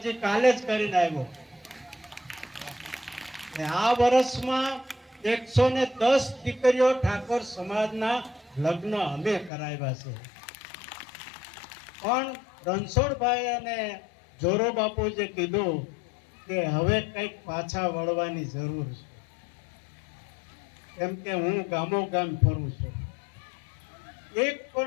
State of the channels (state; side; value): drops out; right; at 9.5 s